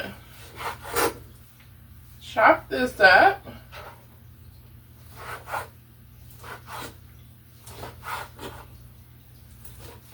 chop this up.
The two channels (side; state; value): both; identical; correlation 1.00